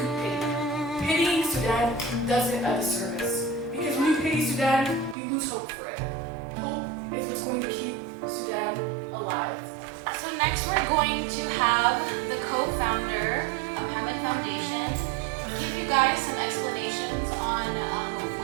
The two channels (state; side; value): drops out; left; at 5.2 s